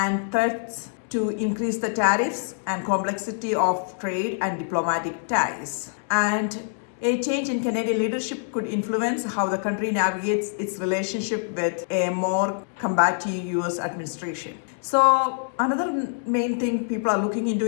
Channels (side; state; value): right; silent; 61 dB below the other